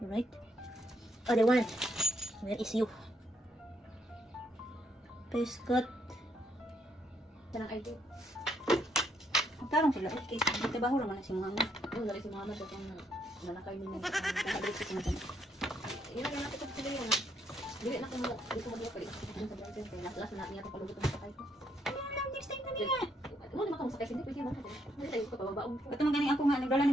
right? Other one. Where is you? Pescot. Kanang ID. Magtarong sila. Okay, trabaho naman na si Muhammad. Oo, lagi si Muhammad at yung nanakay mo ng Nakabalik sa mga tanong. yun ang natin ko sila yun. Dili na ko mo, dito mo dito kayo. Sa boyfriend kay last na niya to palugot ng sakay ko. Next time na niya. Mo di makamo sakay hindi pwede man. Hindi tayo ko pababaon. Ito man ganing ako nga, nagdala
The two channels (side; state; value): both; normal; correlation 0.73